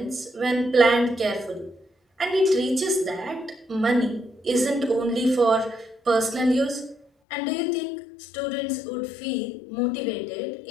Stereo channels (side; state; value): right; drops out; at 7.1 s